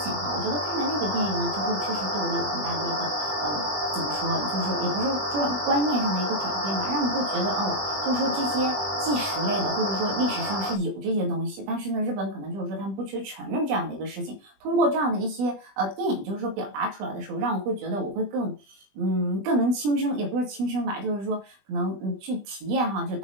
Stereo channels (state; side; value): late; left; 20 ms